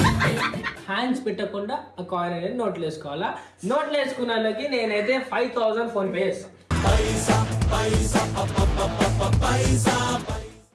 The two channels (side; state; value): both; identical; correlation 1.00